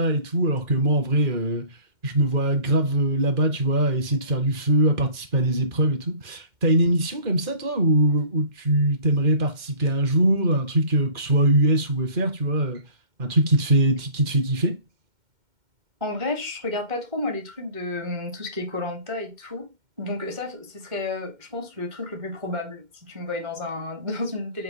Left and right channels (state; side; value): late; left; 2.1 ms